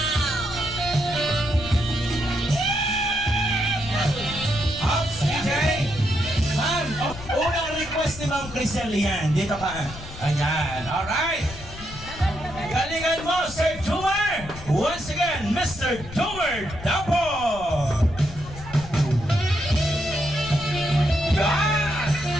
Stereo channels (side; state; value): left; noise; rumble, 14 dB below the sound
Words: Ops, DJ. Ma'am, unang request ni Ma'am Crisel yan. Dito ka. Ayan, alright. Galingan mo, Sir Jumar! Once again, Mr. Jumar Dapo! Yan!